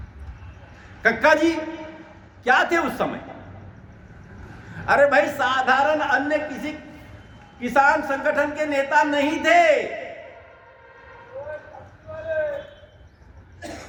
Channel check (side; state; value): both; identical; correlation 1.00